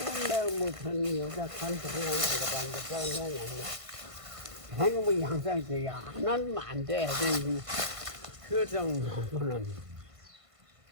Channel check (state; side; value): late; left; 1.5 ms